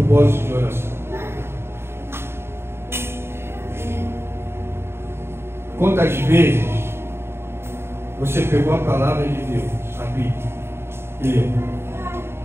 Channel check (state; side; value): late; left; 0.12 ms